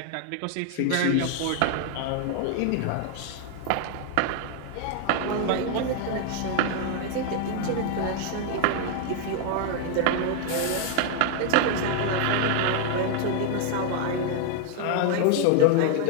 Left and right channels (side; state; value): both; different; correlation 0.00